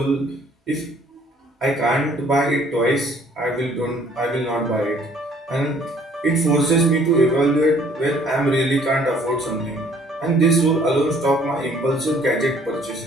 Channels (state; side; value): normal; both; correlation 0.59